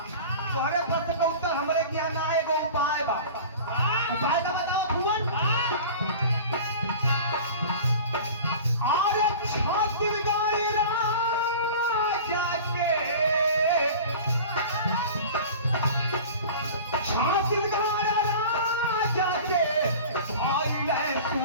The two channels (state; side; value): inverted; both; correlation -0.38